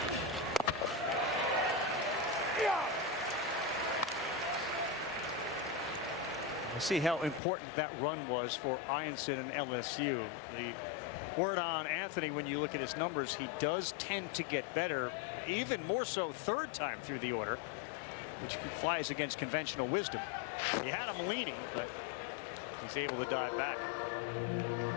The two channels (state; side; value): drops out; right; at 7.4 s